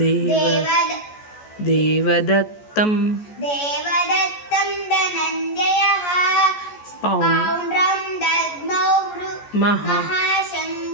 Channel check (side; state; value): right; late; 14 ms